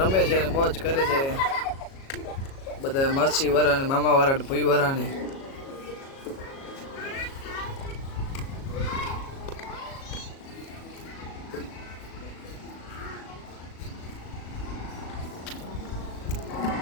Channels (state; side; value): late; right; 37 ms